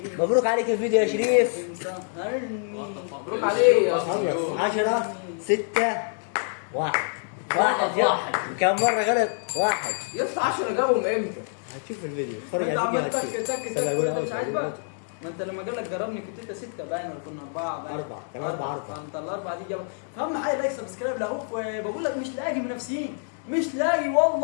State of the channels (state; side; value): silent; right; digital silence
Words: مبروك عليك الفيديو يا شريف. مبروك عليه يا خلص 10 6 1 واحد كم مرة غلط؟ 1. يا اسطى 10 جابهم امتى؟ هتشوف الفيديو اتفرج انت على عمال الفيديو تك هتشوف. تك استنى أقول تك أول مش حاجة. عاجبك ما انت لما قال لك جربني كنت انت 6 باين ولا كنا 4 باين 4 كان 4 فانت الاربعه دي جابت فاهم حاجه لايك سبسكرايب لاخوك بقول لك مش لاقي منافسين مش لاقي